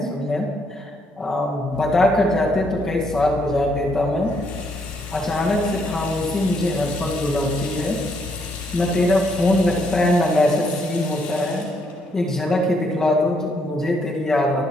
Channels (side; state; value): both; normal; correlation 0.73